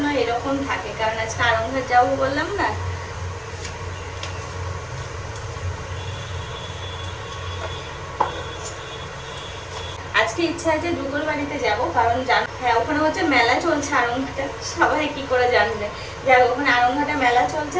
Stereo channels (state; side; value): identical; both; correlation 1.00